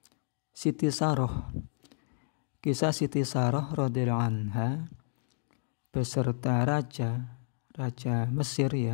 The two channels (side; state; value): right; silent; digital silence